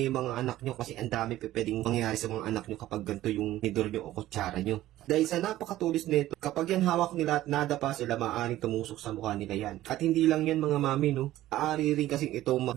yung mga anak nyo kasi ang dami pwedeng mangyari sa mga anak nyo kapag ganito yung tinidor nyo o kutsara nyo. Dahil sa napakatulis nito, kapag yan hawak nila at nadapa sila, maaaring tumusok sa mukha nila yan. At hindi lang yan mga mami, no? Aari rin kasing ito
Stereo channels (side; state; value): left; quieter; 14.7 dB